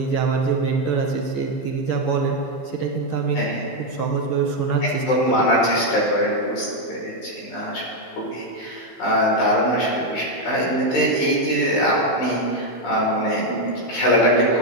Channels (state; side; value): late; right; 15 ms